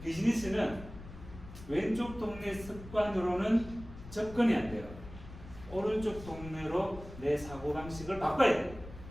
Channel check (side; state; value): left; noise; rumble, 15 dB below the sound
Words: 비즈니스는 왼쪽 동네 습관으로는 접근이 안 돼요. 오른쪽 동네로 내 사고방식을 바꿔야 돼요.